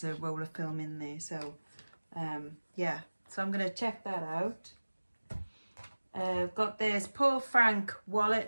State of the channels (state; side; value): inverted; both; correlation -1.00